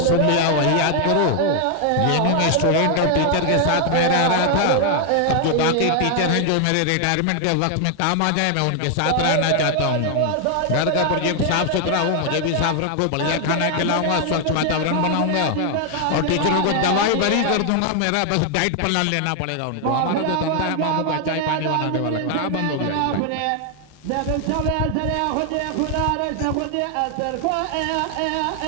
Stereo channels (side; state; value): both; different; correlation 0.00